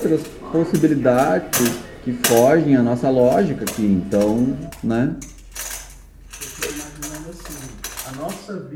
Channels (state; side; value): identical; both; correlation 1.00